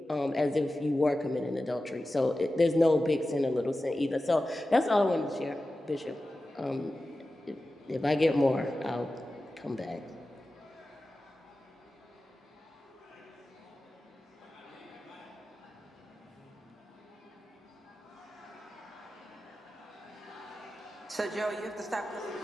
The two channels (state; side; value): normal; both; correlation 0.94